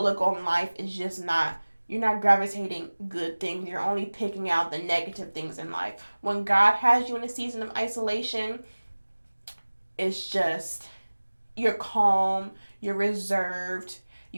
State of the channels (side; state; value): both; inverted; correlation -1.00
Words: on life is just not, you're not gravitating good things. You're only picking out the negative things in life. When God has you in a season of isolation, it's just, you're calm, you're reserved,